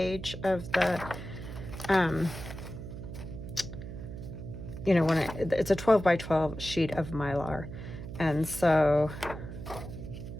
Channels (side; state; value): right; noise; hum, 10 dB below the sound